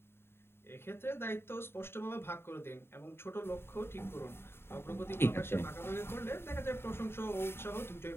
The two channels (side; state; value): right; late; 0.11 ms